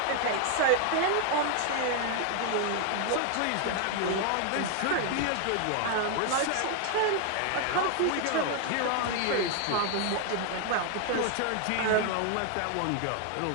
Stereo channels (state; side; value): different; both; correlation 0.00